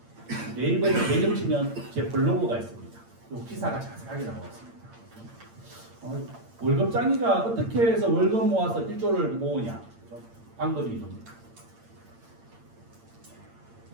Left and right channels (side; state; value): left; late; 8.8 ms